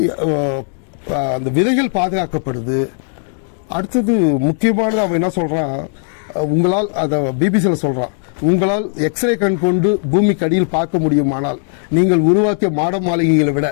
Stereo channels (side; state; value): right; silent; digital silence